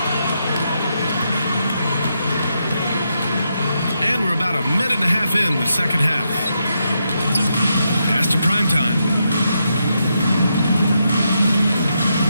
And we're about a minute and a half in the second half. Pass to primetime.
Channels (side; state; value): both; inverted; correlation -0.82